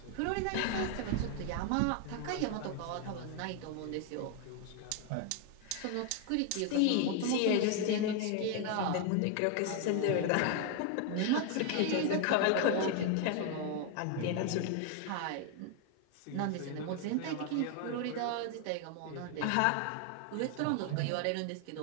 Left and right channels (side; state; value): both; different; correlation 0.01